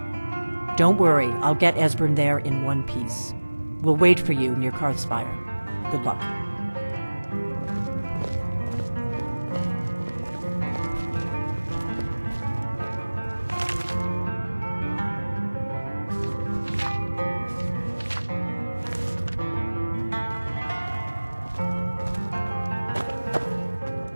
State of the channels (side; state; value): both; inverted; correlation -1.00